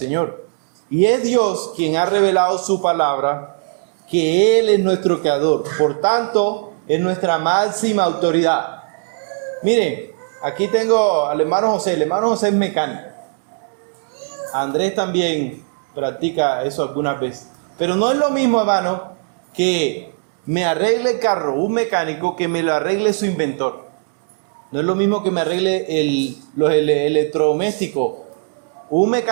Y es Dios quien ha revelado su palabra, que Él es nuestro creador. Por tanto, es nuestra máxima autoridad. Miren, aquí tengo al hermano José. El hermano José es mecánico. Andrés también practica eso algunas veces. Pero no es lo mismo, hermano, que me arregle el carro un mecánico que me lo arregle su inventor. No es lo mismo que me arregle los electrodomésticos un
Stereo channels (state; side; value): silent; left; digital silence